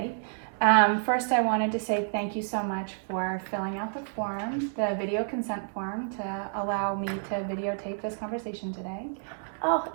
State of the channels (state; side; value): silent; left; digital silence